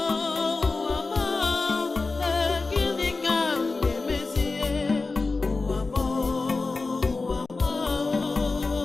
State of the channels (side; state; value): right; quieter; 3.8 dB